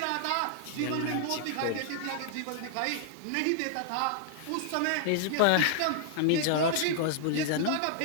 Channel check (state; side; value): different; both; correlation -0.01